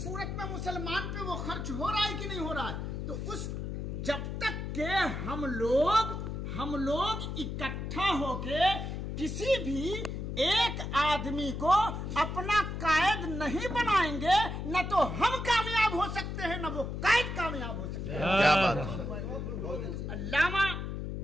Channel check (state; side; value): noise; left; hum, 5 dB below the sound